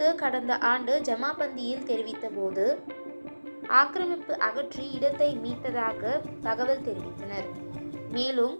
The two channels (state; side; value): inverted; both; correlation -1.00